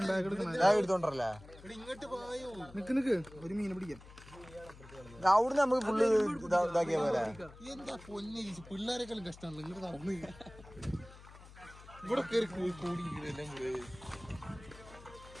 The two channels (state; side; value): noise; left; hum, 19 dB below the sound